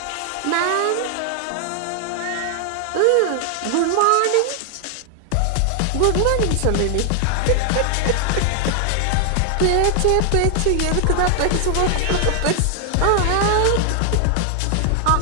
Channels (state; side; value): different; both; correlation 0.00